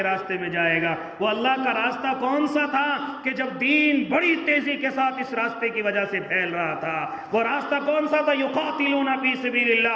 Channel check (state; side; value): identical; both; correlation 1.00